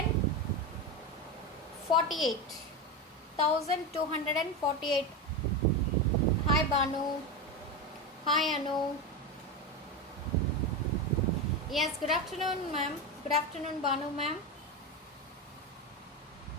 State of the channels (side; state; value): both; normal; correlation 0.17